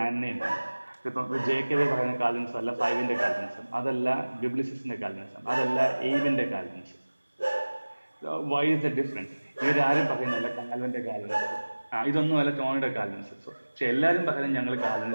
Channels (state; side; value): inverted; both; correlation -1.00